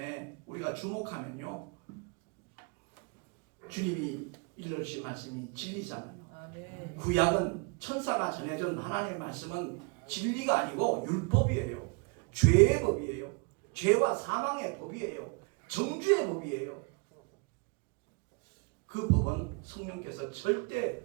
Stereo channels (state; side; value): quieter; left; 32.0 dB